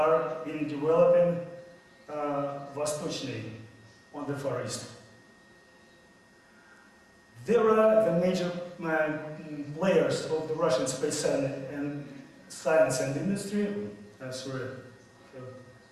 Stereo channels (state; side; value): identical; both; correlation 1.00